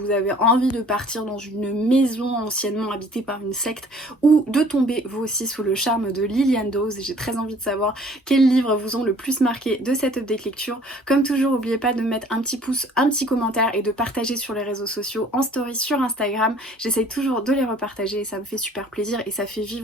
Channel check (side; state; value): both; normal; correlation 0.53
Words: avez envie de partir dans une maison anciennement habitée par une secte ou de tomber vous aussi sous le charme de Liliane Dawes. J'ai très envie de savoir quels livres vous ont le plus marqué de cette update lecture. Comme toujours, n'oubliez pas de mettre un petit pouce, un petit commentaire et de partager sur les réseaux sociaux, en story sur Instagram. J'essaye toujours de les repartager et ça me fait super plaisir et ça fait